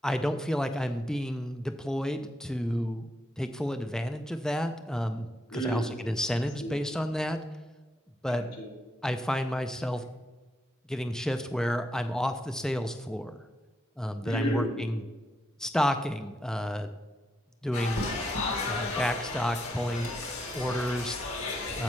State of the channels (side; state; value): both; normal; correlation 0.80